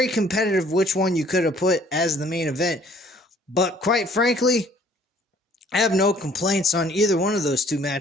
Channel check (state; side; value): normal; both; correlation 0.58